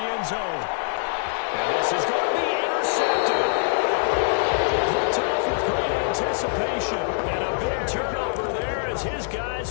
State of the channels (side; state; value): right; silent; 63 dB below the other